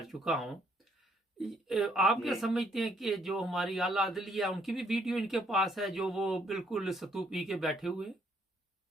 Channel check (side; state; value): both; normal; correlation 0.68